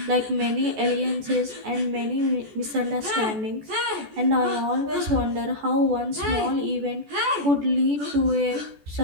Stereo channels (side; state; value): left; late; 14 ms